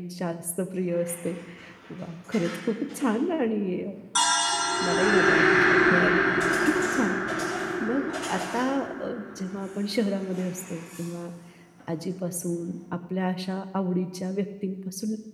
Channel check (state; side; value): identical; both; correlation 1.00